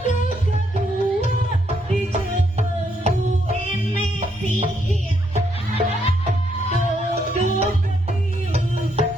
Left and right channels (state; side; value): normal; both; correlation 0.75